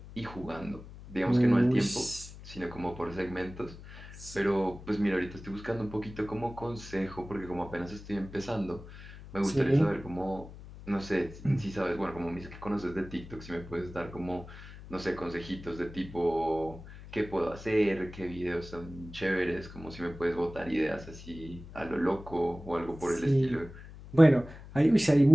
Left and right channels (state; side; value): noise; left; hum, 15 dB below the sound